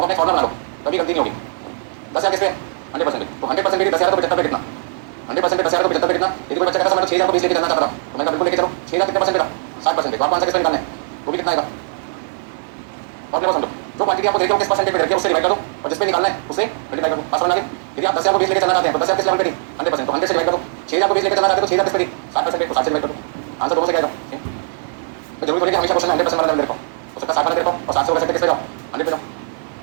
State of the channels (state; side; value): silent; left; digital silence